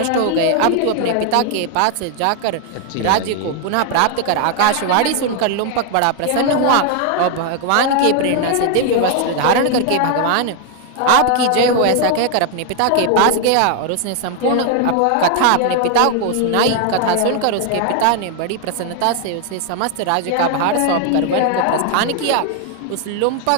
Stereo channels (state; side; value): different; both; correlation 0.00